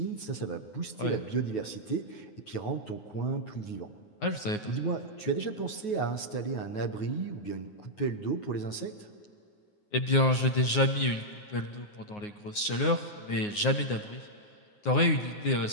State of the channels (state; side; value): late; right; 9.6 ms